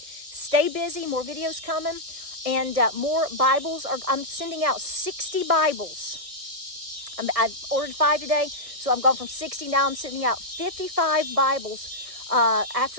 stay busy, more videos coming, and more Bibles. I'm sending out 60 Bibles. I've ordered 5 today, so I'm going from 60. Now I'm sending out 55 Bibles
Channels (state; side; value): late; left; 1.6 ms